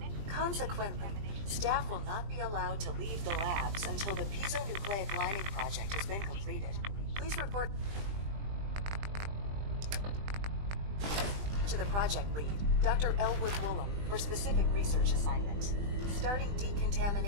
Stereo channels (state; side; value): late; left; 20 ms